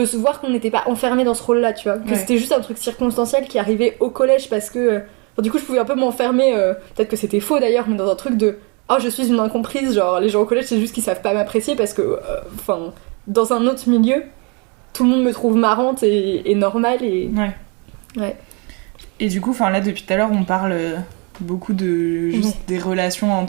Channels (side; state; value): left; quieter; 32.8 dB